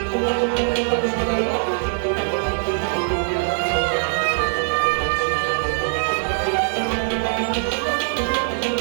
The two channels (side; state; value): left; silent; digital silence